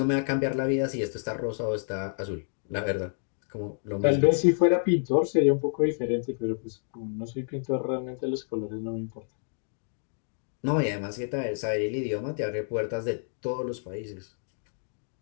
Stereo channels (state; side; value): silent; right; digital silence